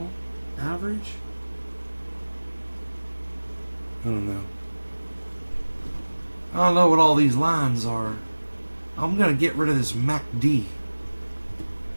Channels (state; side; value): inverted; both; correlation -1.00